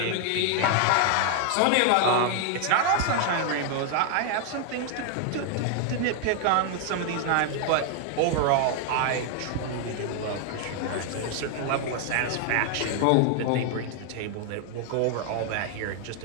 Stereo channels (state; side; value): different; both; correlation 0.00